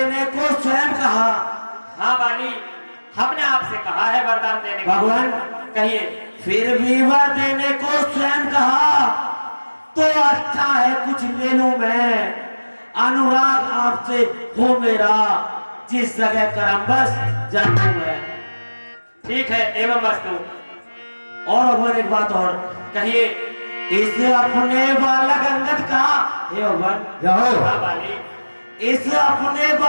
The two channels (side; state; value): both; inverted; correlation -1.00